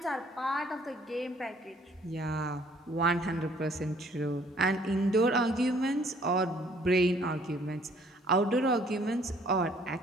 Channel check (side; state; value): both; normal; correlation 0.60